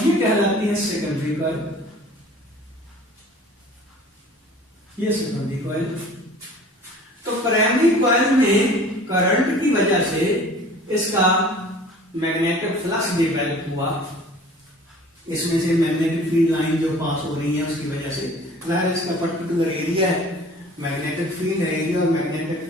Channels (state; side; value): normal; both; correlation 0.47